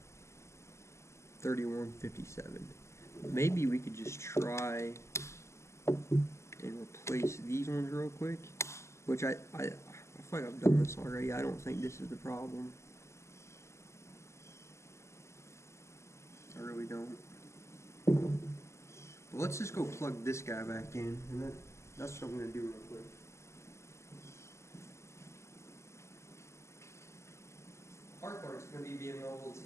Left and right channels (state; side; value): late; right; 0.13 ms